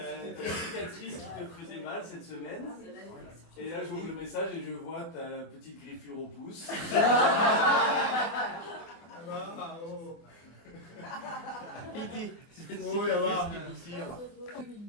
ta cicatrice qui te faisait mal cette semaine. Et là, j'ouvre le message et je vois ta petite griffure au pouce. Piti. Oh, là va.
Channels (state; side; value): late; right; 24 ms